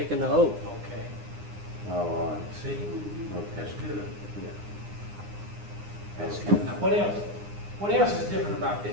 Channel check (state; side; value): late; left; 9.8 ms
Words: the oath. Okay. Oh, all right. See? That's Okay. good. Yeah. That's good. Now, what else? What else is different about